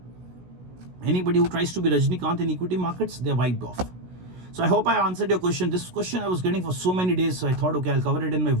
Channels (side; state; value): left; late; 16 ms